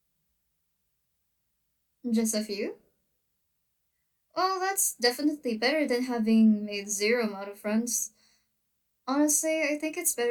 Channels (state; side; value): identical; both; correlation 1.00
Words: Just a few? Well, that's definitely better than having made zero amount of friends. Honestly, I think it's